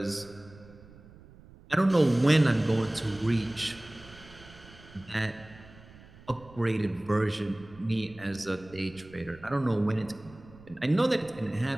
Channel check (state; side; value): noise; right; rumble, 22 dB below the sound